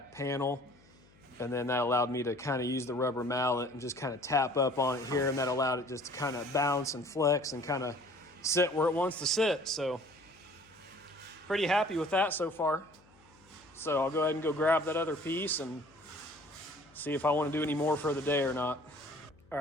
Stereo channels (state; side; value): noise; left; hum, 29 dB below the sound